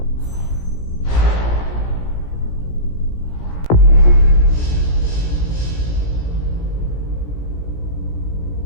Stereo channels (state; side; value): late; right; 17 ms